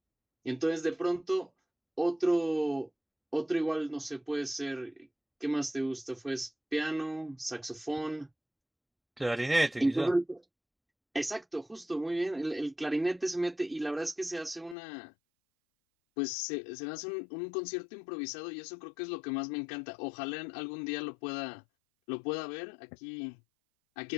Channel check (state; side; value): drops out; right; at 14.8 s